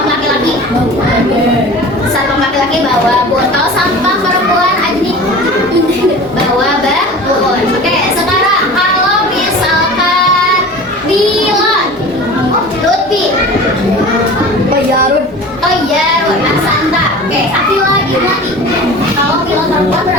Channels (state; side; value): normal; both; correlation 0.38